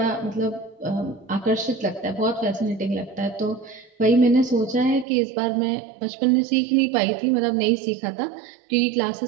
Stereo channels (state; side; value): drops out; left; at 5.1 s